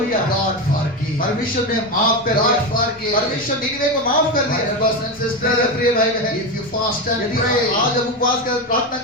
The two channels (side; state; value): both; normal; correlation 0.15